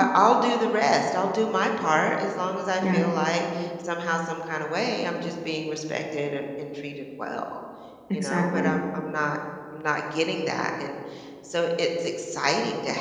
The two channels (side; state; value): both; identical; correlation 1.00